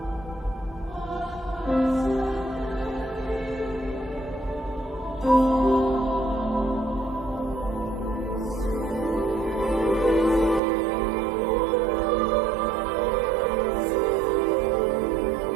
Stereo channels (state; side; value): drops out; left; at 10.6 s